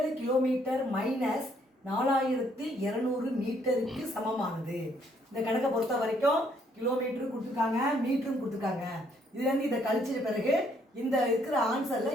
கிலோமீட்டர் மைனஸ் 4200 மீட்டருக்கு சமமானது. இந்த கணக்கை பொறுத்த வரைக்கும் கிலோமீட்டரும் கொடுத்துருக்காங்க, மீட்டரும் கொடுத்துருக்காங்க. இதுலேருந்து இதை கழிச்சிட்ட பிறகு இந்த இருக்கிற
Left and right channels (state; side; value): normal; both; correlation 0.68